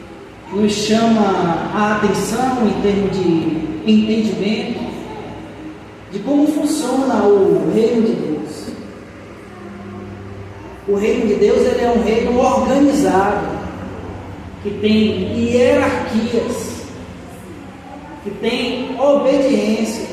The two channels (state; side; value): identical; both; correlation 1.00